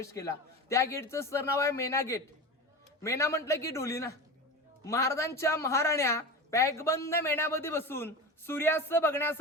केला, त्या गेटचं सर नाव आहे मेना गेट. मेना म्हटलं की डोली ना. महाराजांच्या महाराण्या पॅकबंद मेण्यामध्ये बसून सूर्यास्त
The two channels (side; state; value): both; normal; correlation 0.27